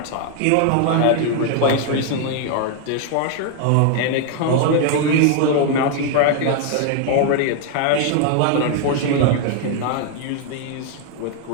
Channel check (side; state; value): both; different; correlation 0.00